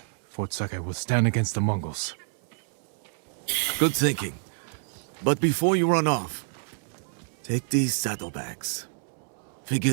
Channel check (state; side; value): silent; left; 60 dB below the other